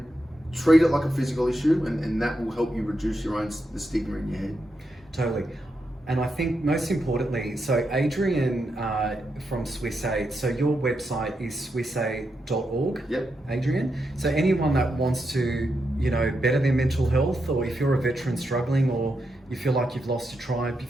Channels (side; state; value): both; normal; correlation 0.84